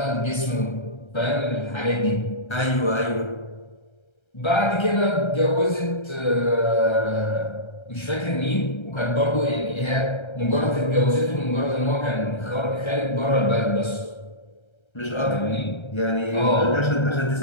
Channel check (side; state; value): right; late; 1.3 ms